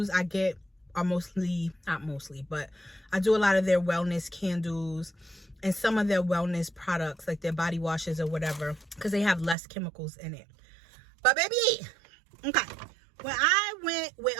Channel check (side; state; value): left; drops out; at 9.6 s